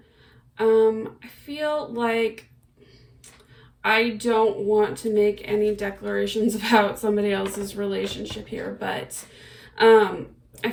I feel like I don't want to make any declarations about somebody else's relationship here, but I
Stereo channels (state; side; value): identical; both; correlation 1.00